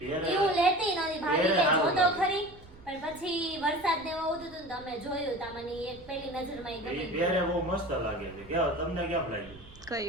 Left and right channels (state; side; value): noise; right; rumble, 21 dB below the sound